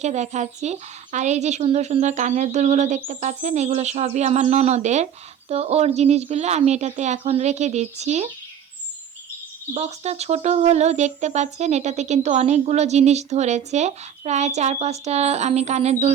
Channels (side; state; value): left; quieter; 8.9 dB